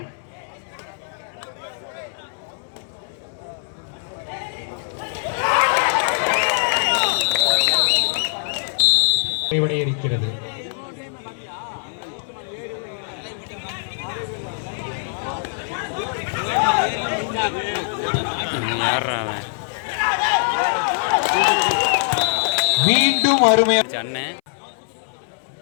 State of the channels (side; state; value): right; silent; 60 dB below the other